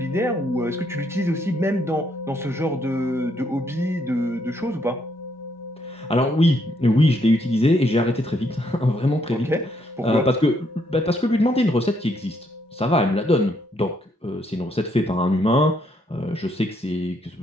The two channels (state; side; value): normal; both; correlation 0.73